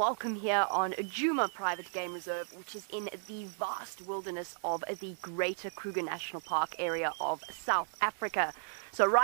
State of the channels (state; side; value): silent; left; 55 dB below the other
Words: here on Djuma Private Game Reserve, which is in the vast wilderness of the Greater Kruger National Park area of South Africa. So